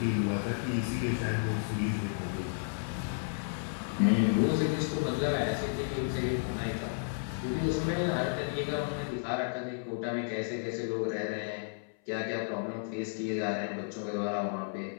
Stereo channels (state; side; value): silent; right; 56 dB below the other